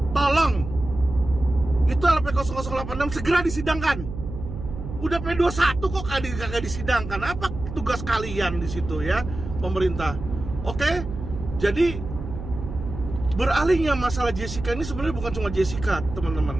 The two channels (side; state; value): right; noise; hum, 9 dB below the sound